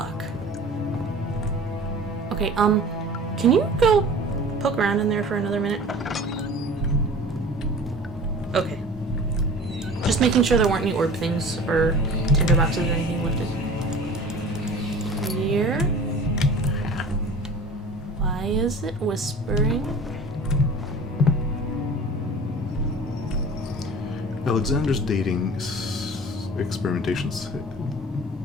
Okay, can you go poke around in there for another minute? Okay. Just making sure there weren't any orb things or tinder boxes or anything lifted. Here. Why is it whispering? Alexander's dating experimentations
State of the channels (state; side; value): normal; both; correlation 0.41